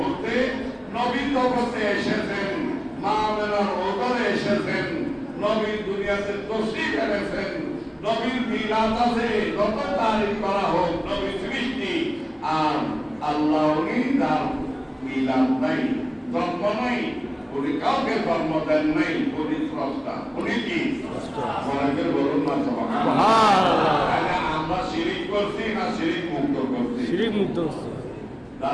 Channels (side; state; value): both; identical; correlation 1.00